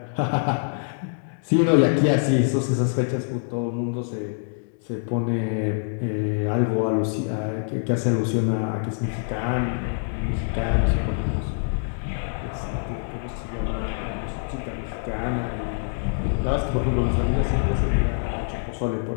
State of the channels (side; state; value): right; silent; digital silence